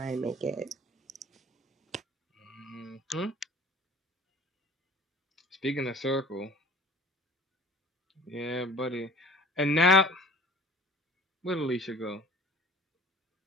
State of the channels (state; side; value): normal; both; correlation 0.46